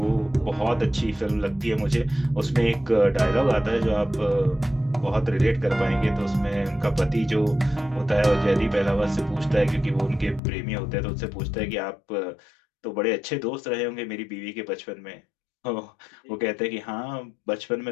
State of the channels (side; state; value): right; drops out; at 10.4 s